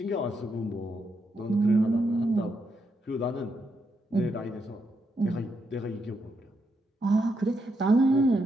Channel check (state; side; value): normal; both; correlation 0.81